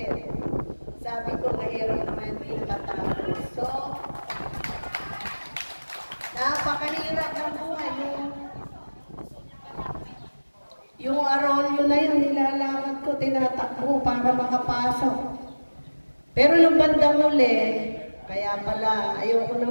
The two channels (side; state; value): both; inverted; correlation -1.00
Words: Sabi ko, mahirap naman din matapos. So, napakalirap ng buhay. Yung arolyo na yun, nilalakad ko, tinatakbo para makapasok. Pero nung bandang uli, kaya pala, ayoko na